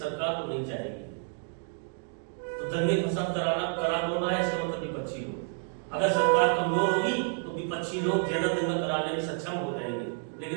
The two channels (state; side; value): silent; left; 58 dB below the other